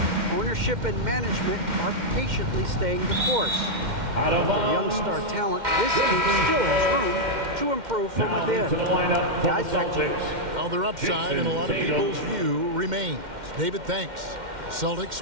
Ownership and management are patiently staying the course. Out of With their young star talent, this team still has room to improve from within. To the lineup for Guys, the back to you. Celtics. Well, their upside in a lot of people's view remains. David, thanks. Celtics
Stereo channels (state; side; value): late; left; 2.1 ms